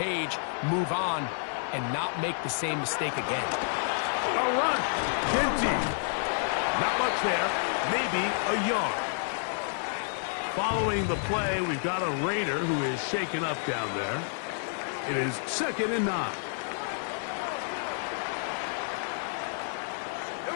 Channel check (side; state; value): right; silent; digital silence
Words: move on, and not make the same mistake again. A run. N.G.K. Not much there. Maybe a yard. Following the play, we've got a Raider who is shaken up down there. It is 2nd and 9. Here